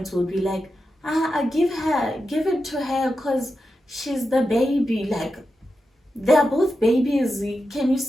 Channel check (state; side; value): normal; both; correlation 0.89